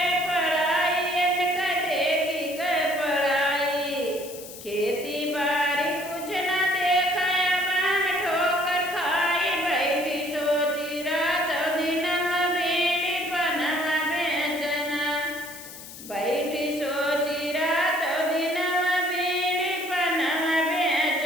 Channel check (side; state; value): left; noise; hiss, 14 dB below the sound